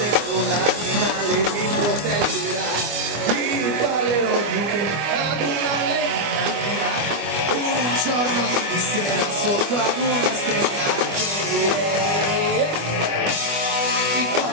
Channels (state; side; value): late; left; 25 ms